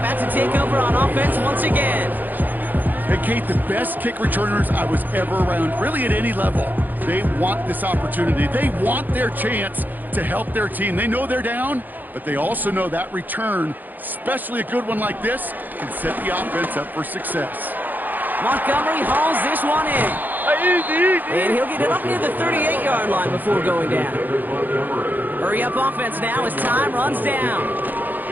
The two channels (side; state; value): left; late; 0.085 ms